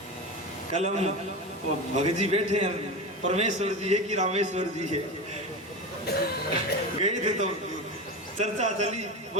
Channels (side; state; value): both; normal; correlation 0.24